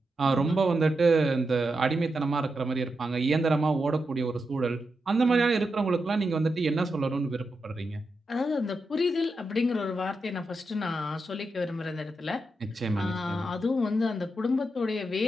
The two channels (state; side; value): normal; both; correlation 0.86